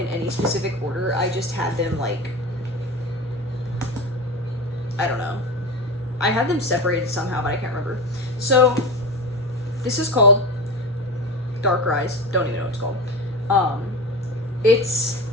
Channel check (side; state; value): both; normal; correlation 0.26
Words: any specific order. I just had them, like, I don't know. I had them separated somehow, but I can't remember. So, this is called Dark Rise. Don't even know what it's called. It's